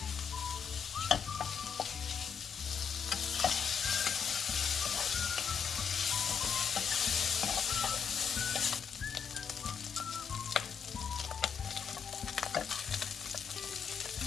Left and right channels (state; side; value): quieter; right; 6.8 dB